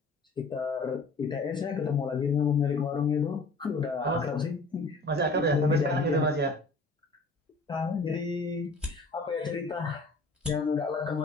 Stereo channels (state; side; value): quieter; right; 3.3 dB